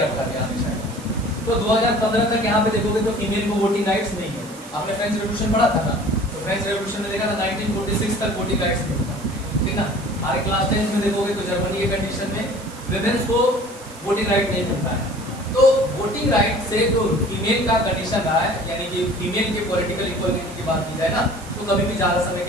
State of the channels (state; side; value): noise; right; hiss, 19 dB below the sound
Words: गया हमेशा। तो 2015 तक यहाँ पे देखोगे तो फीमेल को वोटिंग राइट्स नहीं है। आपने फ्रेंच रेवोल्यूशन पढ़ा था ना, तो फ्रेंच रेवोल्यूशन में देखा था 1946 तक वोटिंग राइट्स नहीं था, ठीक ना। हमारे क्लास 10 में देखोगे तो जर्मनी के कंडीशन में विमेन्स को वोटिंग राइट नहीं मिलता है। तो वोटिंग राइट से जो फीमेल का कंडीशन रहा है, यानी कि फीमेल के पॉलिटिकल इक्वालिटी की बात की जाए ना, तो कभी भी ज़्यादा समय